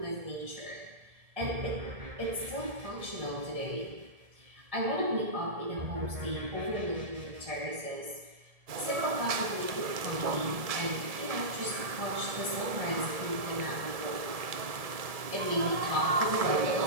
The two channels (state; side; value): late; left; 1.7 ms